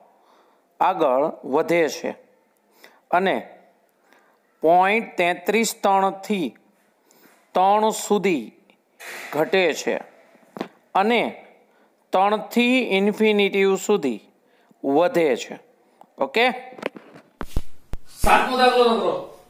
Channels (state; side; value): identical; both; correlation 1.00